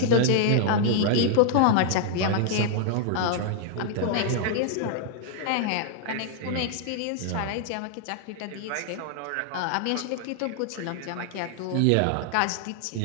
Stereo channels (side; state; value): both; different; correlation 0.00